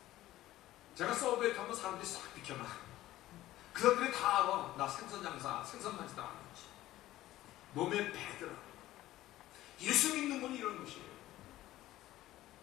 제가 서브웨이 타면 사람들이 싹 비켜나. 그 사람들이 다 알아. 나 생선 장사, 생선 만지다 하는 거지. 몸에 배더라. 예수 믿는 건 이런 것이에요.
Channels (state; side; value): quieter; right; 15.3 dB